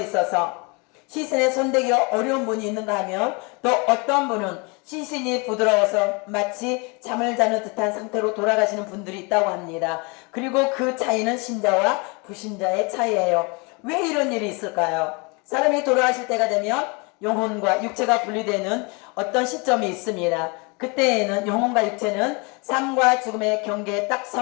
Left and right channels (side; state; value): right; quieter; 30.4 dB